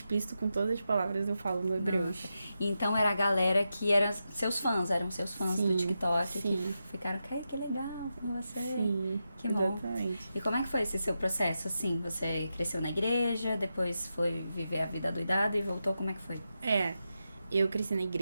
com todas as palavras, eu falo no Hebreus. Então era a galera que eram seus fãs do TikTok. Sim. Que ficaram, que legal com você. Sim, que bom. Exatamente. E como é que foi esse seu processo, assim? Você cresceu na igreja, depois foi viver a vida doidada e voltou, como é que foi? Eu cresci na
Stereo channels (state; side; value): inverted; both; correlation -0.88